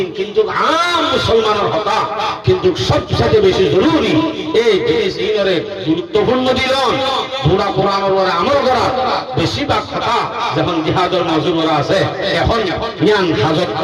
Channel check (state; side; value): identical; both; correlation 1.00